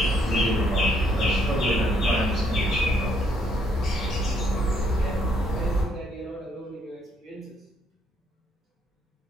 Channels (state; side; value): normal; both; correlation 0.70